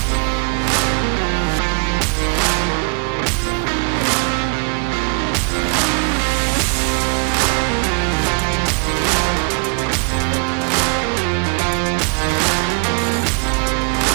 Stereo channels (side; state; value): left; quieter; 34.6 dB